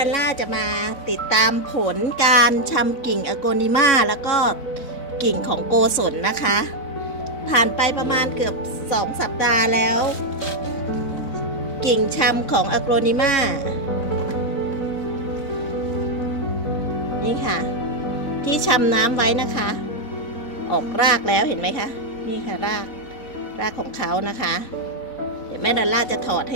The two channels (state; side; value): late; right; 4.0 ms